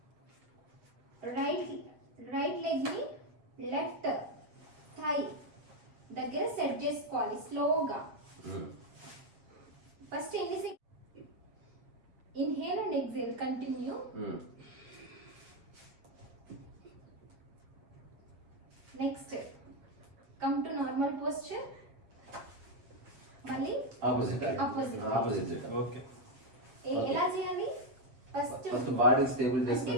రైట్ లెగ్ ని లెఫ్ట్ థై దగ్గర సెట్ చేసుకోవాలి స్లోగా. ఫస్ట్ ఎన్ని inhale and exhale continue. Next come to normal posture. మళ్ళీ ఆపోజిట్. ఓకే, ఎలా చేయాలి? ఫస్ట్ బాడీ స్టేబుల్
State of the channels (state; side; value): late; left; 8.0 ms